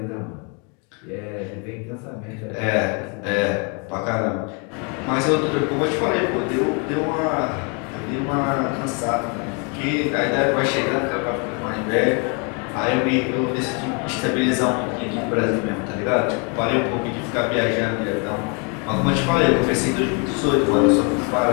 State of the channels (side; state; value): right; quieter; 34.2 dB